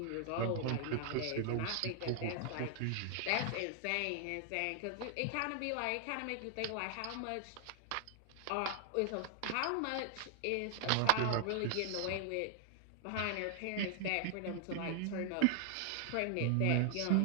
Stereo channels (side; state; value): both; different; correlation 0.00